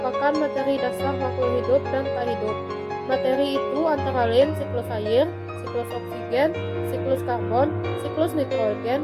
materi dasar makhluk hidup dan tak hidup. Materi itu antara lain siklus air, siklus oksigen, siklus karbon, siklus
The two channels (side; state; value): both; identical; correlation 1.00